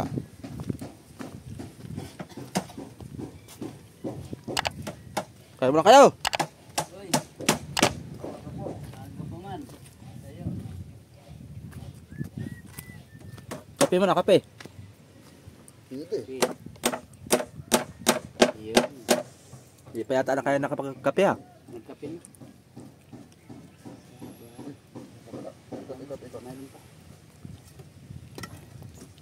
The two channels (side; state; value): both; identical; correlation 1.00